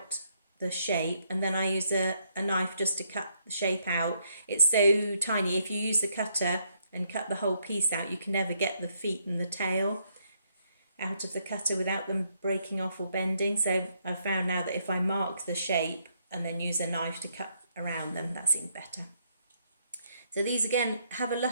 the shape, and then I use a knife just to cut the shape out. It's so tiny, if you use the cutter and cut the whole piece out, you can never get the feet and the tail out of the cutter without them breaking off or bending. So I've found now that if I mark the shape and then use a knife to cut around them, that seems better. So these again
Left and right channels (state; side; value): inverted; both; correlation -0.73